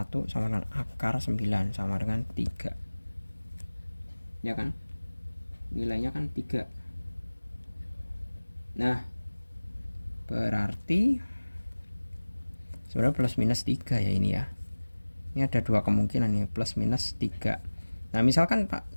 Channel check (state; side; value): inverted; both; correlation -1.00